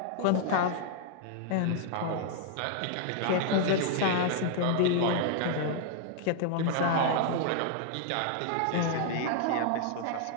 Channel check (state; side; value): different; both; correlation 0.00